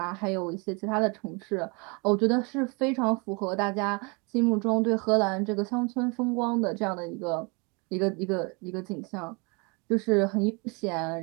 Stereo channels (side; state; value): left; quieter; 30.8 dB